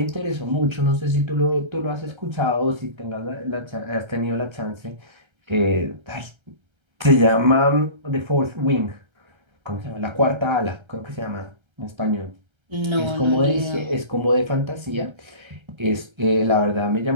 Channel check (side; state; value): left; late; 1.3 ms